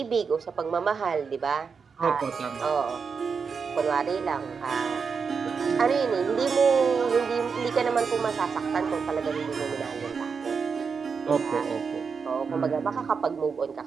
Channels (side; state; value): left; quieter; 5.7 dB